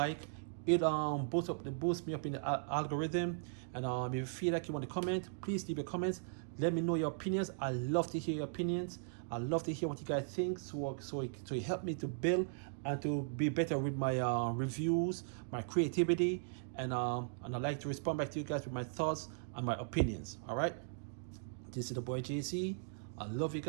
it boosts me up in the algorithm. And if you feel like you want to comment, please leave your comments. Let me know your opinions. I love to hear your opinions. I love to hear what you guys think, so it help me to build and to be better with my reviews, my creativity, and I like to respond back to you guys with my thoughts and my opinions. All right, this is the boy JC. I love you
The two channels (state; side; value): silent; left; digital silence